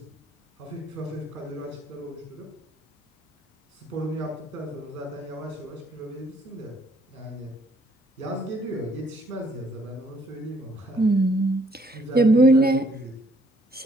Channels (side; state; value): both; normal; correlation 0.65